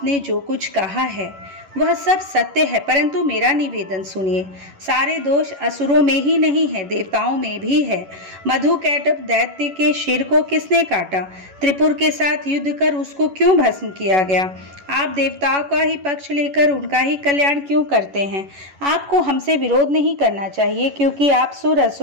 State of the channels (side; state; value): left; late; 11 ms